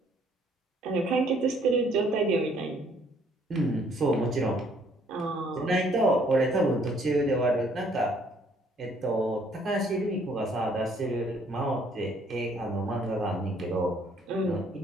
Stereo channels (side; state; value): both; normal; correlation 0.63